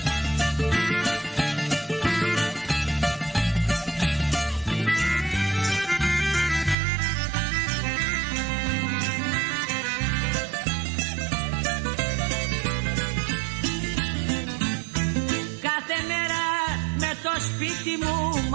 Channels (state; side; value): drops out; left; at 6.8 s